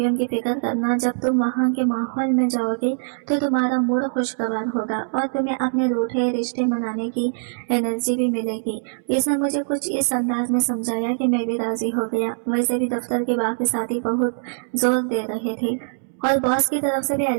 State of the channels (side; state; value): left; silent; 64 dB below the other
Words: की फिक्र करना। जब तुम वहाँ के माहौल में जाओगे तो तुम्हारा मूड खुशगवार होगा और तुम्हें अपने रूठे रिश्ते मनाने की एनर्जी भी मिलेगी। इसने मुझे कुछ इस अंदाज में समझाया कि मैं भी राजी हो गया। वैसे भी दफ्तर के बाकी साथी बहुत जोर दे रहे थे और बॉस की तरफ से भी